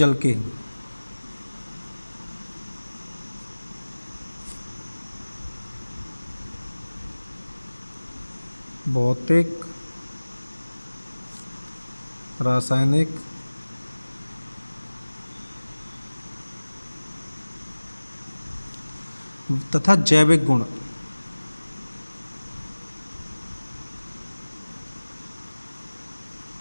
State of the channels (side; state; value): both; inverted; correlation -1.00